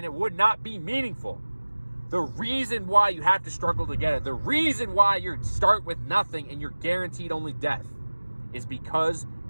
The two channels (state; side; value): inverted; both; correlation -1.00